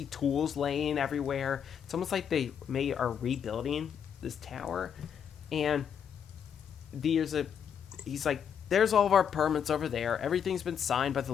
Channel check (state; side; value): quieter; right; 7.9 dB